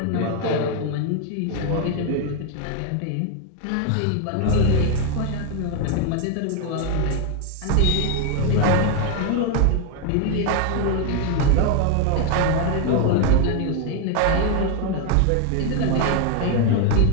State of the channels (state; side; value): different; both; correlation 0.01